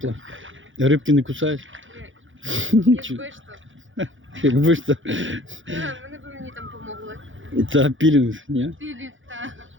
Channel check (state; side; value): late; left; 0.56 ms